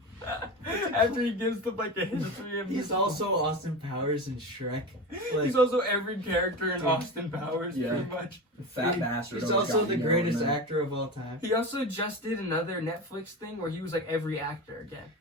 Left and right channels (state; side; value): normal; both; correlation 0.26